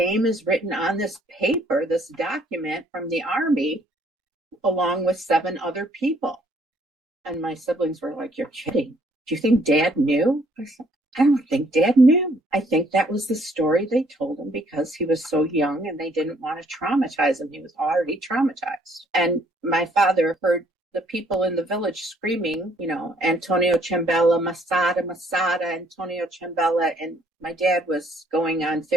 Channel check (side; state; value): both; normal; correlation 0.64